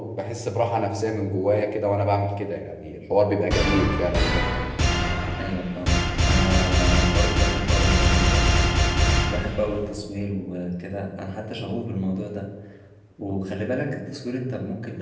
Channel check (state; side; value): identical; both; correlation 1.00